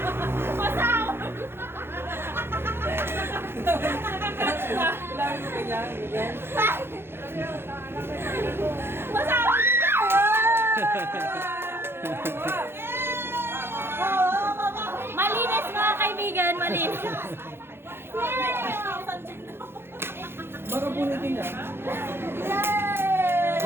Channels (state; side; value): late; left; 0.11 ms